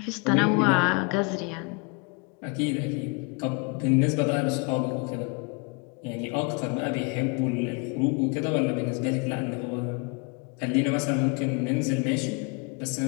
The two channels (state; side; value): quieter; right; 32.1 dB